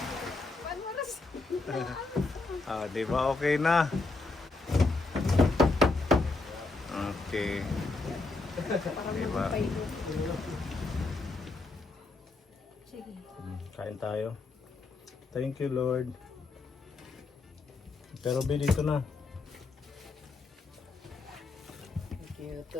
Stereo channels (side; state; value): right; quieter; 3.6 dB